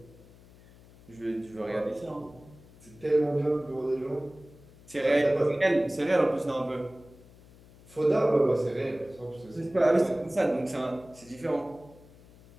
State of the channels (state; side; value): noise; left; hum, 24 dB below the sound